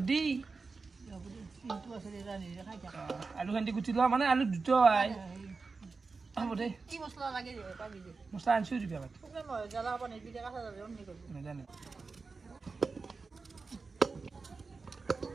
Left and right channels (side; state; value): left; quieter; 4.3 dB